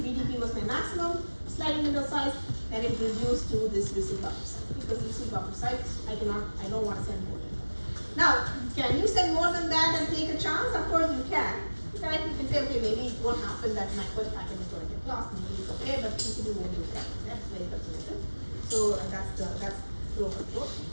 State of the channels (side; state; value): both; inverted; correlation -1.00